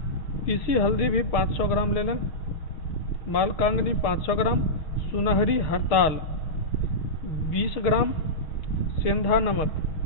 पीसी हल्दी भी 500 ग्राम ले लें। मालकांगनी 500 ग्राम, सुनहरी हरताल 20 ग्राम, सेंधा नमक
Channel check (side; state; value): right; late; 6.4 ms